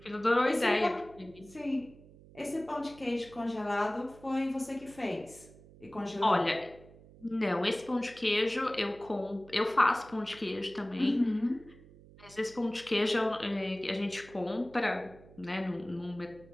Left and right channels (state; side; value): noise; right; hum, 22 dB below the sound